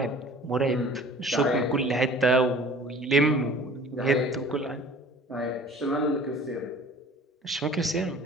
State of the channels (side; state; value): both; normal; correlation 0.47